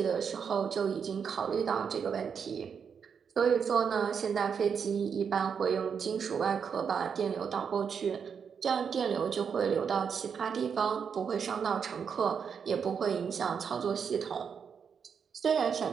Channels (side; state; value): left; quieter; 6.7 dB